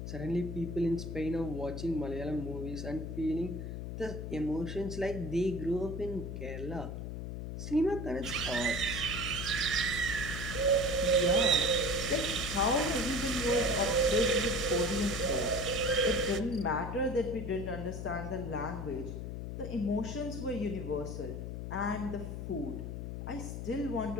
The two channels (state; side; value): noise; left; hum, 6 dB below the sound